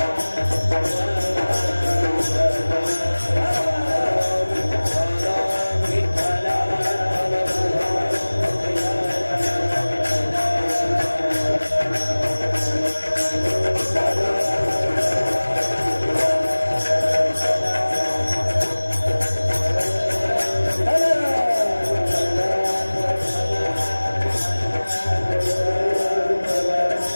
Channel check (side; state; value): both; inverted; correlation -1.00